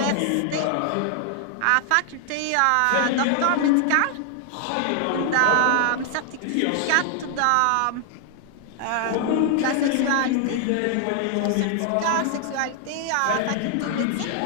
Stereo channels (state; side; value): different; both; correlation 0.00